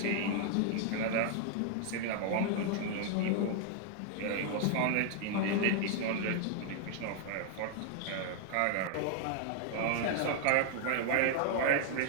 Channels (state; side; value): different; both; correlation 0.00